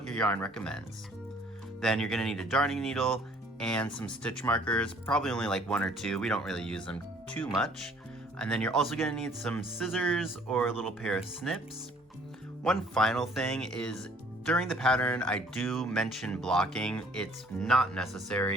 your yarn recommends. Then you're going to need a darning needle and some stitch markers, probably only like 1 or 2. We don't really use them too much. And then you're also going to need some scissors or a little pair of snips. One final thing is, during the pattern I do mention blocking. It's not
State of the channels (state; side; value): normal; both; correlation 0.58